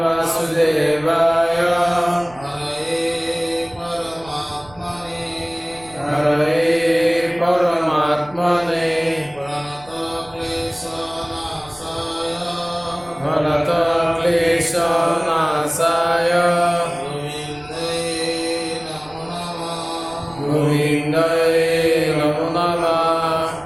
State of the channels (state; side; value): noise; right; rumble, 23 dB below the sound